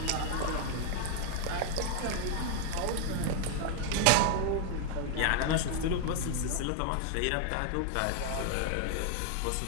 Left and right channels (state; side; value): different; both; correlation 0.01